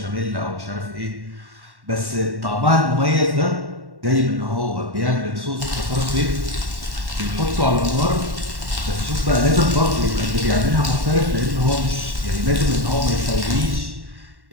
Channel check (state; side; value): late; left; 1.1 ms